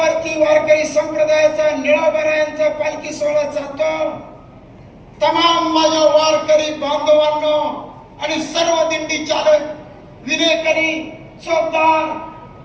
वारकरी संप्रदायाचा निळोबरायांचा पालखी सोहळा चालतो, तमाम माझ्या वारकरी बांधवांनो आणि सर्व दिंडी चालक, विनेकरी,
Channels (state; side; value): identical; both; correlation 1.00